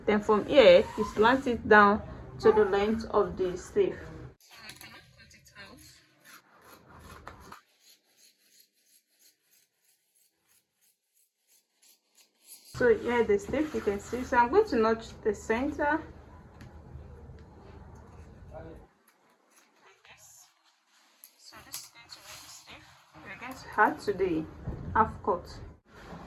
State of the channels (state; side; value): identical; both; correlation 1.00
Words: Then from here, you slant it down to the length of the sleeve. So here the sleeve, you can see. So I'm going to notch the center. So this is going to be the sleeve. We're going to add to the half cut.